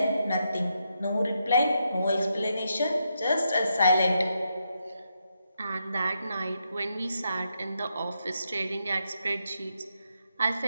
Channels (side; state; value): both; inverted; correlation -0.82